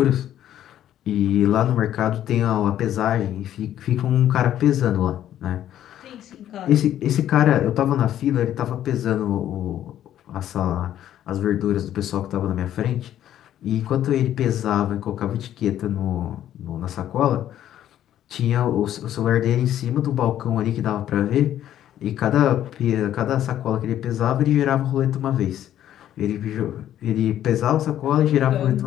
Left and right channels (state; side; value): quieter; right; 11.5 dB